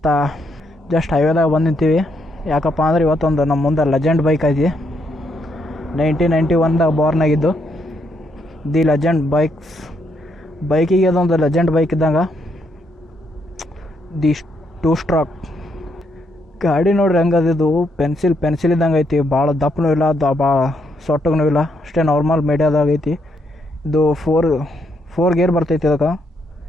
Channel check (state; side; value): normal; both; correlation 0.76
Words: ಜಸ್ಟ್ ಹೈವೇದಾಗ ಬಂದು ನಿಂತೀವಿ. ಯಾಕಪ್ಪ ಅಂದ್ರೆ ಇವತ್ತೊಂದು ನಮ್ಮ ಮುಂದೆ ಲೆಜೆಂಡ್ ಬೈಕ್ ಐತಿ. 1991ದಾಗ ಬಾರ್ನ್ ಆಗಿದ್ದು ದಿ ಲೆಜೆಂಡ್ ಬೈಕಿಗೆ ಅದೊಂದು ಲೆಜೆಂಡ್ ಬೈಕ್ ಇದ್ದಂಗೆ. ದಿ 2 ಸ್ಟ್ರೋಕ್ ಗಾಡಿ ನೋಡ್ರಿ ಹೆಂಗದಿದ್ದು ಪೆನ್ಸಿಲ್ ಇದ್ದಂಗೆ ಐತಿ. ಭಾಳ ದಪ್ಪನೂ ಇಲ್ಲ, ಭಾಳ ಸೊಟ್ಟಗೂ ಇಲ್ಲ, ಅಷ್ಟೇ ನಾರ್ಮಲ್ ಮೀಡಿಯಾದಾಗ ಐತಿ. ಇದು ಫೋರ್ ಗೇರ್ ಬರ್ತೈತಿ ಇದಕ್ಕೆ.